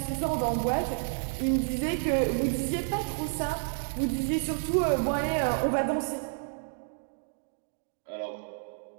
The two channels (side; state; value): left; silent; digital silence